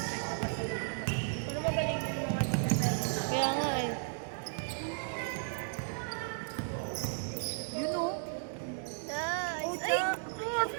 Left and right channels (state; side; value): silent; left; digital silence